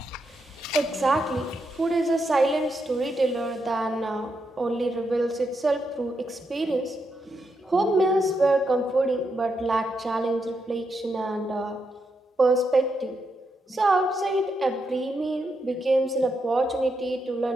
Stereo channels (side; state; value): both; normal; correlation 0.82